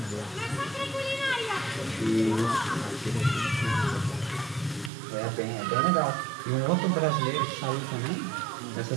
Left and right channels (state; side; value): drops out; left; at 4.9 s